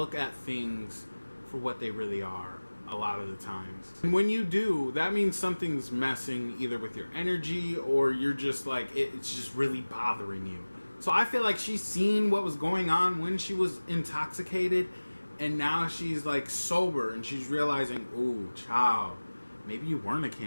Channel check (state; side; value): inverted; both; correlation -1.00